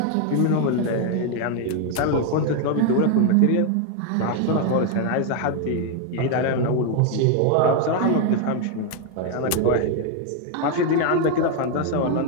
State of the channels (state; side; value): different; both; correlation 0.01